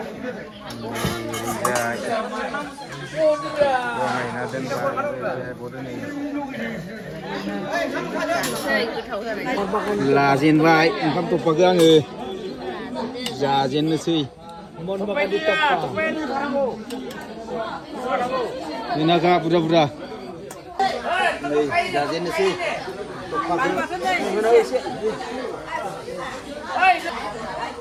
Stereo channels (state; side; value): identical; both; correlation 1.00